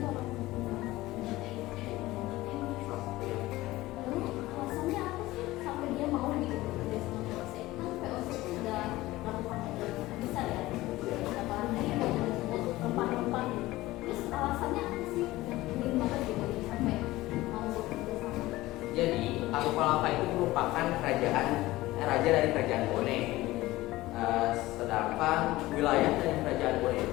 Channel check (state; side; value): quieter; right; 17.9 dB